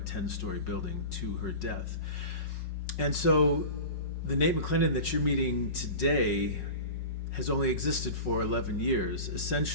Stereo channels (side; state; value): right; late; 5.4 ms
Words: 10-story building to her death. And so the Nate McClendon that you're meeting today has only existed for 11 years.